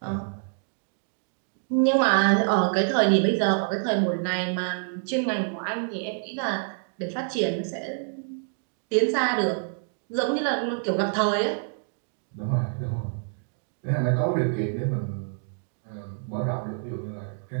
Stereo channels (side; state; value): left; silent; digital silence